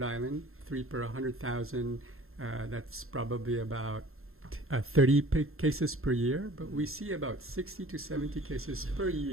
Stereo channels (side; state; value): left; late; 0.61 ms